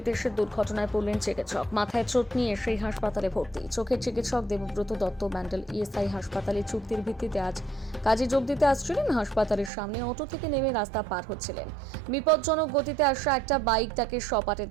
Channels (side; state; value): left; drops out; at 9.7 s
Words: এসে দুর্ঘটনায় পড়লেন চিকিৎসক। মাথায় চোট নিয়ে সেই হাসপাতালে ভর্তি। চোখের চিকিৎসক দেবব্রত দত্ত ব্যান্ডেল ইএসআই হাসপাতালে চুক্তির ভিত্তিতে আজ কাজে যোগ দিতে আসছিলেন। হাসপাতালের সামনে অটো থেকে নেমে রাস্তা পার হচ্ছিলেন। বিপজ্জনক গতিতে আসা একটা বাইক তাকে সপাটে